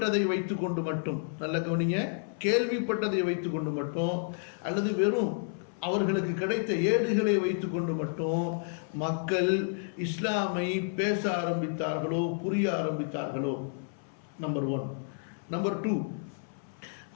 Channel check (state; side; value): silent; right; 57 dB below the other